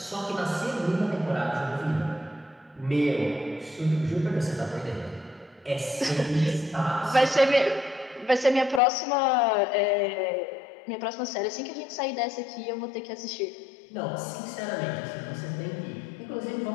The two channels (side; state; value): right; drops out; at 8.8 s